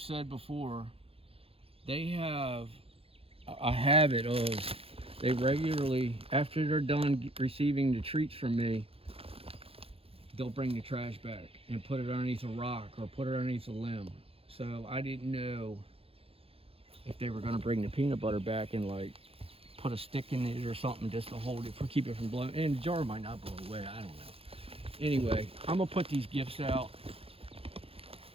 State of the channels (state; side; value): late; left; 0.27 ms